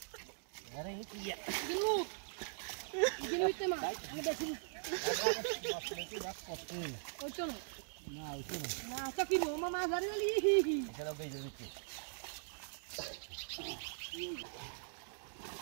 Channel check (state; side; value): silent; left; digital silence